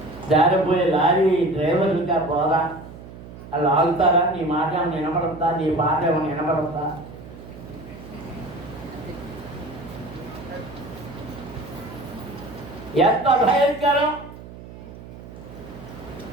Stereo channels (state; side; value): noise; right; hum, 15 dB below the sound